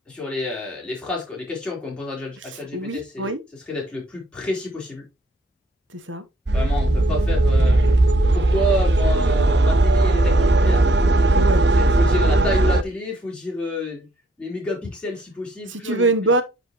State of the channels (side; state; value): both; normal; correlation 0.69